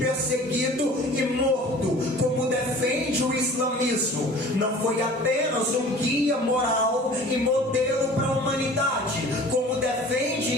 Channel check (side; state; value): both; normal; correlation 0.45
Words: e morto, como defende o islamismo. Não foi apenas um guia moral e modelo para a humanidade, como defende